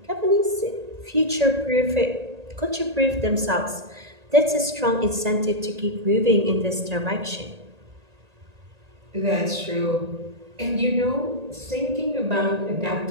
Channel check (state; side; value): late; left; 1.8 ms